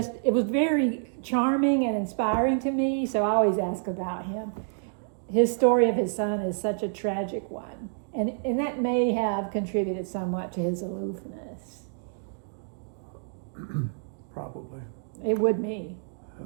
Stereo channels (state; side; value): silent; left; digital silence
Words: it was very charming and inspiring to me, so I always ask about him. His story of his son is such a tragic one, and that may have contributed somewhat to his aloofness. Probably. It would me.